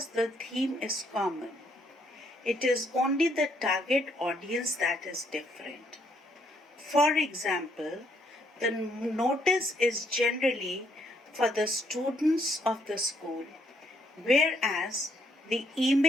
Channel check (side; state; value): both; normal; correlation 0.70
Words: the theme is common. It is only the target audience that is different. For example, the notice is generally for the students of the school, whereas the